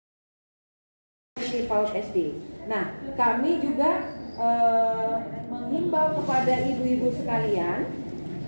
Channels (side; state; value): both; inverted; correlation -1.00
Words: Di PAUD SD. Nah, kami juga menghimbau kepada ibu-ibu sekalian.